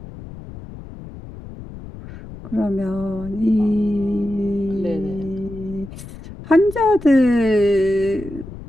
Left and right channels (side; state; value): left; noise; rumble, 14 dB below the sound